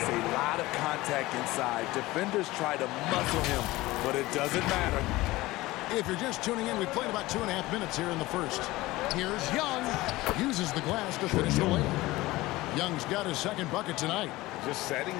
a lot of contact inside. Defenders try to muscle him, but it doesn't matter. If you're just tuning in, we played about 2.5 minutes here in the first. Here's Young. Uses the glass to finish the layup. Young's got his second bucket tonight. Just setting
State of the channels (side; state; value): right; quieter; 19.0 dB